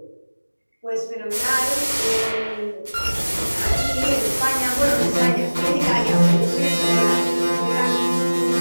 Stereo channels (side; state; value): both; inverted; correlation -1.00